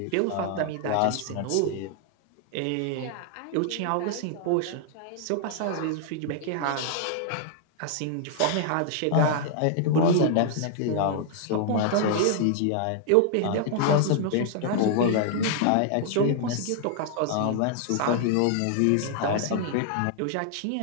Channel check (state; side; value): different; both; correlation 0.00